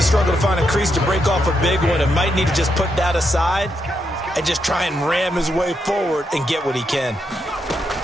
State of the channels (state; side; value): normal; both; correlation 0.81